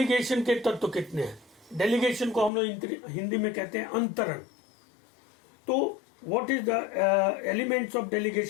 के तत्व कितने हैं? डेलीगेशन को हम लोग हिंदी में कहते हैं अंतरण. तो what is the elements of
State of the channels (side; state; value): right; drops out; at 2.5 s